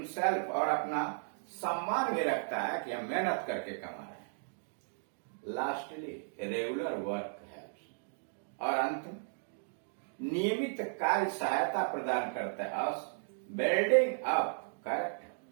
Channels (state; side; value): silent; left; digital silence